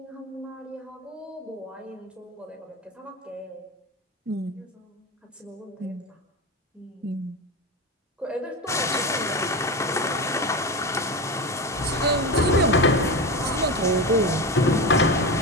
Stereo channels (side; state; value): both; normal; correlation 0.21